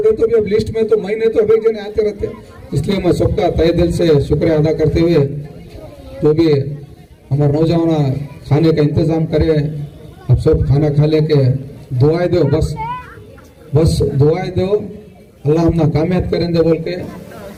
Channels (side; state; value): both; identical; correlation 1.00